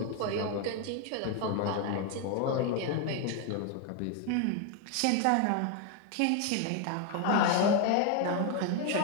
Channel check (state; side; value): different; both; correlation 0.01